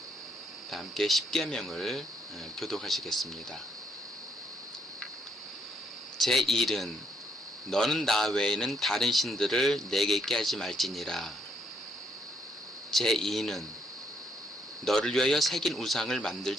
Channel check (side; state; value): both; normal; correlation 0.72